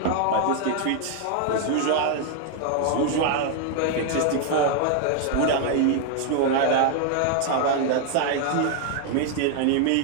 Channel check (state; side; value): different; both; correlation 0.00